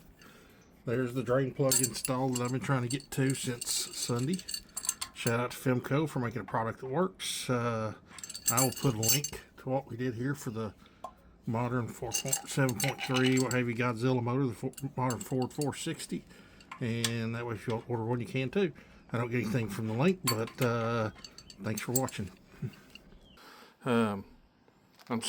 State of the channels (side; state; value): both; identical; correlation 1.00